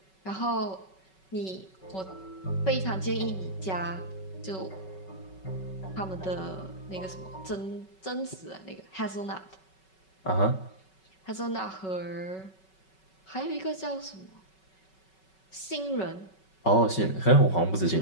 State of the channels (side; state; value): right; late; 5.3 ms